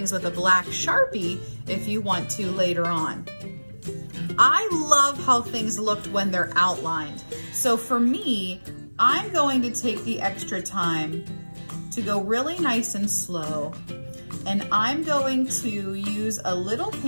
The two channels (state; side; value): inverted; both; correlation -1.00